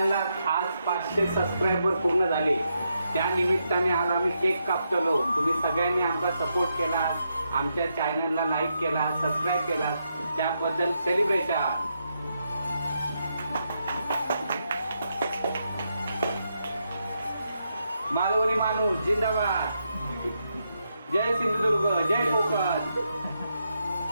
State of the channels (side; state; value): both; inverted; correlation -0.82